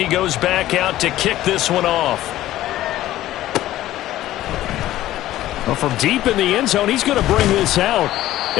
goes back out to kick this one off. Well, from deep in the end zone, he's going to bring this out.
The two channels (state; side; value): quieter; right; 14.5 dB